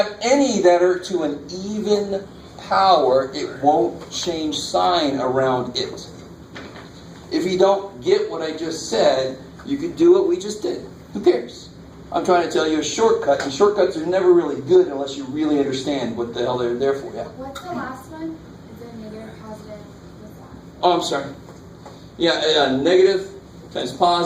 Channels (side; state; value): both; identical; correlation 1.00